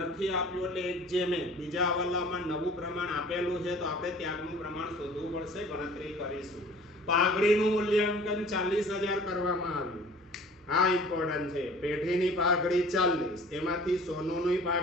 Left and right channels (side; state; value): both; normal; correlation 0.48